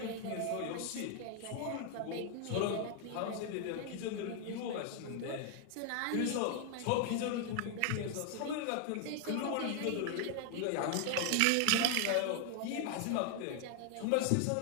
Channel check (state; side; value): different; both; correlation 0.00